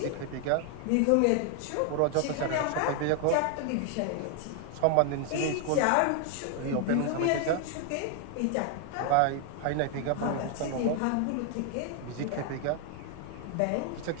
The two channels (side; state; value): both; different; correlation 0.00